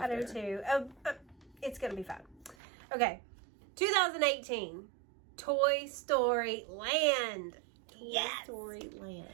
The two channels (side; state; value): left; drops out; at 2.6 s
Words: I do too. It's going to be fun. Okay, 2018, Toy Story Land. Toy Story Land.